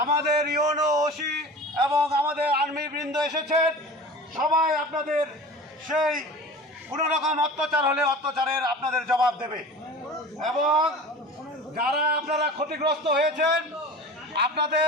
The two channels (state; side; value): normal; both; correlation 0.37